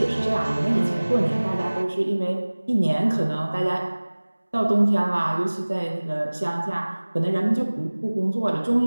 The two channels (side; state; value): both; inverted; correlation -1.00